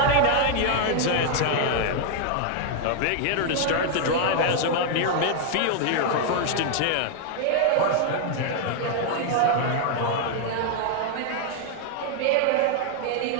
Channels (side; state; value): both; different; correlation 0.00